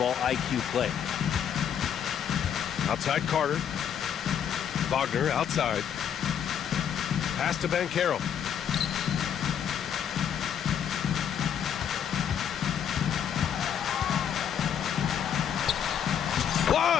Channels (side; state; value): right; quieter; 8.7 dB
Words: IQ play. Outside Carter. Wagner outside. Pass to Banchero.